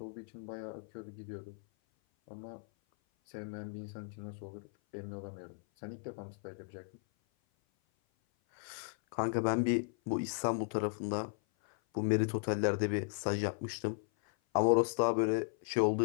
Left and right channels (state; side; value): silent; right; 54 dB below the other